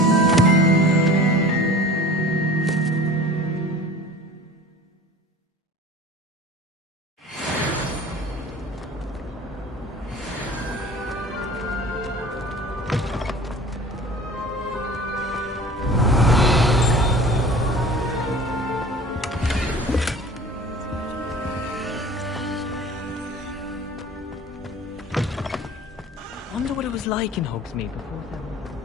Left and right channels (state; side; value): normal; both; correlation 0.42